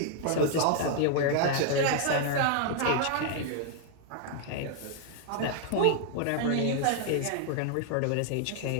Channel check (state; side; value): different; both; correlation 0.00